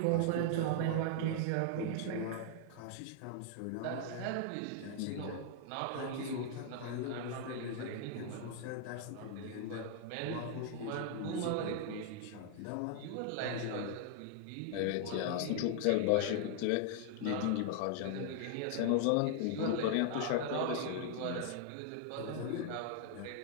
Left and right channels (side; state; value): both; different; correlation 0.00